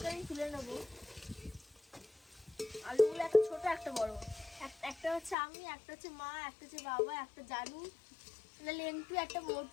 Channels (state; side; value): drops out; right; at 5.4 s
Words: আমি তুলে নেবো। আলুগুলো একটা ছোট একটা বড়, একটা হচ্ছে আমি, একটা হচ্ছে মা, একটা হচ্ছে বাবা, একটা জানু, একটা লেন্টু, একটা